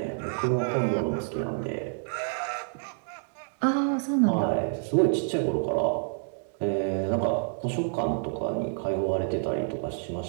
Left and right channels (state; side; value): silent; left; digital silence